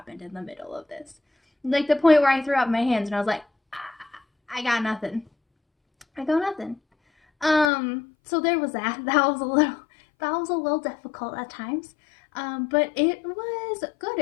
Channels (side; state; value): right; drops out; at 7.7 s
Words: in the middle of this. Like the point where I threw up my hands and I was like, I got nothing. I got nothing. So there was that. That was a little difficult at times. But it was good.